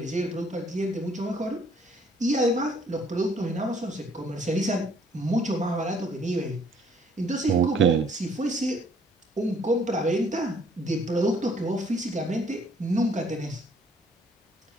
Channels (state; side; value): normal; both; correlation 0.63